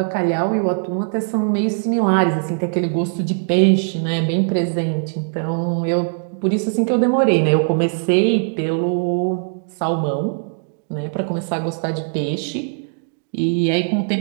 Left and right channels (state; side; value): silent; left; digital silence